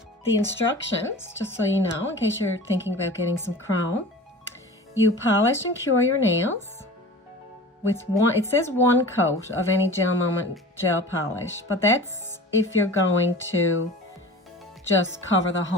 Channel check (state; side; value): normal; both; correlation 0.38